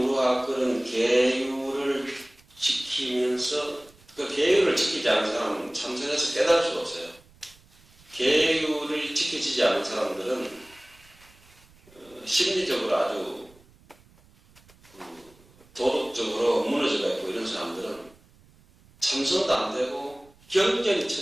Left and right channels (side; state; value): right; noise; rumble, 28 dB below the sound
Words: 그런 계율을 지키면서 그 계율을 지키지 않은 사람은 참선에서 깨달을 수가 없어요. 계율을 지켜지지 않은 사람들은 심리적으로 아주 도덕적으로 무너져가 있고 이런 사람들은 참선도 안 되고 경전이